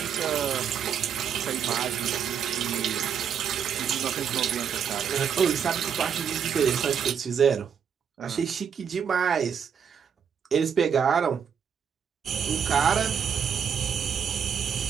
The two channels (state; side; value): quieter; left; 7.6 dB